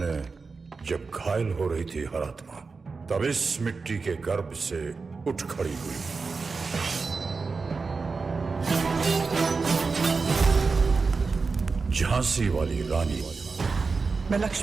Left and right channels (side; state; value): left; quieter; 4.5 dB